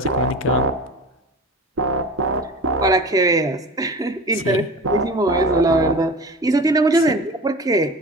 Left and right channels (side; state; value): both; normal; correlation 0.34